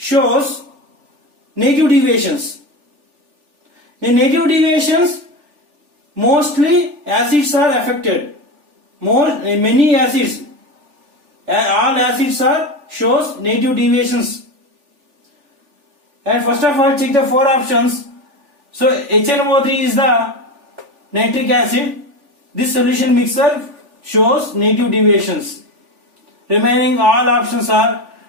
negative deviations? In negative deviations, mostly acids are affected. Many acids, all acids are shows negative deviations. And first of all, check the four options. So HNO3 is the nitric acid. This solution mixture shows negative deviations. Remaining all options are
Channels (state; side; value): late; left; 3.4 ms